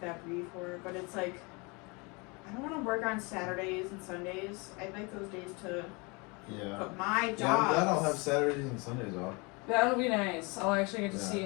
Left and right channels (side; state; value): right; quieter; 28.7 dB